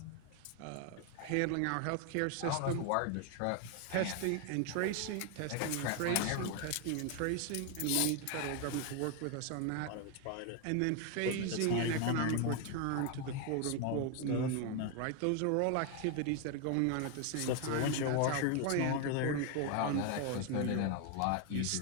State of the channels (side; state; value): both; different; correlation 0.01